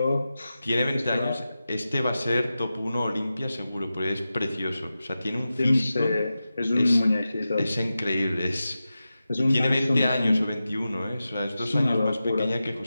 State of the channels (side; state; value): both; inverted; correlation -0.93